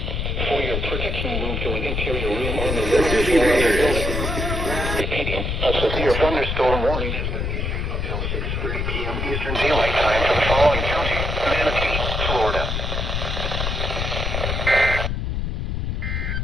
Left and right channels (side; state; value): left; noise; rumble, 1 dB below the sound